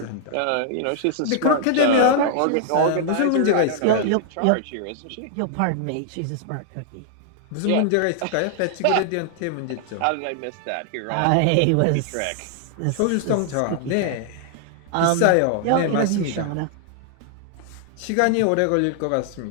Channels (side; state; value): both; different; correlation -0.01